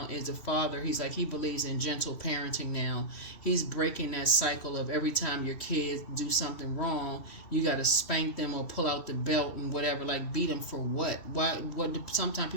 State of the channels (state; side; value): late; right; 3.1 ms